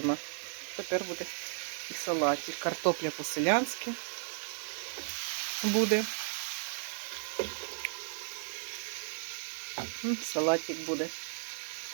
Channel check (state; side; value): silent; left; digital silence